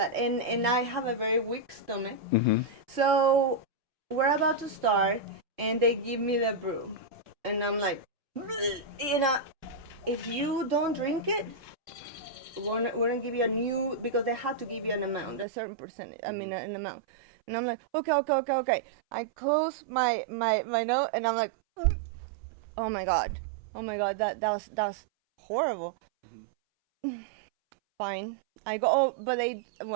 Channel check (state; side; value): drops out; left; at 15.5 s